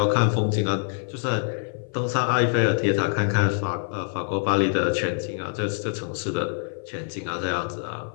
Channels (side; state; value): right; silent; 55 dB below the other